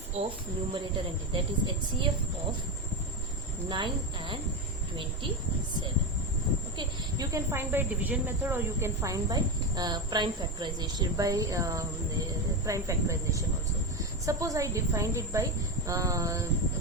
of numerator and that is HCF of 9 and 27. Okay, you can find by division method or you can find by prime factorization, by prime factorization also. Suppose I defined it by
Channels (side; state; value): both; normal; correlation 0.15